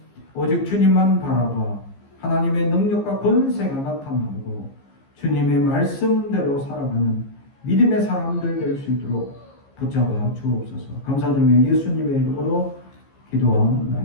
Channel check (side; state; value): right; late; 15 ms